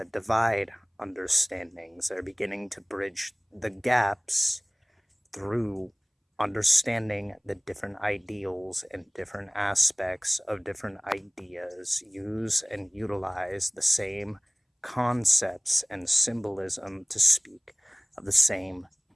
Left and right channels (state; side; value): identical; both; correlation 1.00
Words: divide understandings. They're beginning to bridge the gaps through understanding the different ideals and different aspects of different ideas, use and utilize the same concepts and symbolism to speak of the same